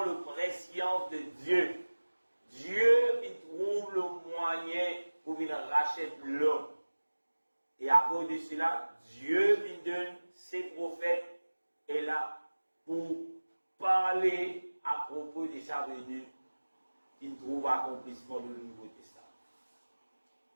le prescience de Dieu. Dieu, il trouve le moyen pour qu'il rachète l'homme. Et à cause de cela, Dieu, il donne ses prophètes et là pour parler à propos de sa venue, il trouve accomplissement du Nouveau Testament.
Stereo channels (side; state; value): both; inverted; correlation -1.00